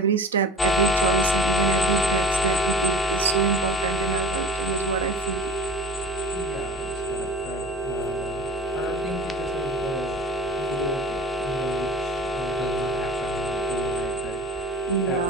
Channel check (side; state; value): both; normal; correlation 0.38